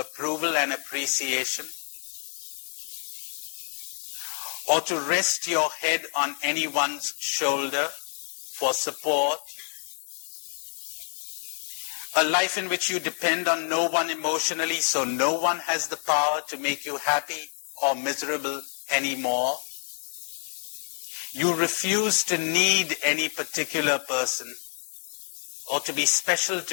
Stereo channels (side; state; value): right; silent; digital silence